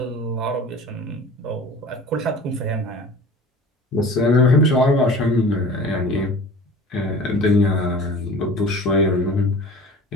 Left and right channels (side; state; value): both; normal; correlation 0.41